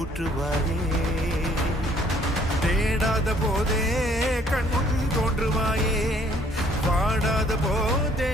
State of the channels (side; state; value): both; normal; correlation 0.61